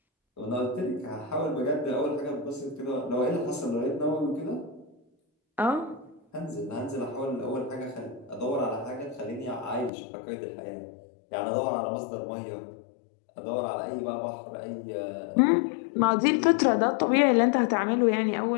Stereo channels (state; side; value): drops out; right; at 9.9 s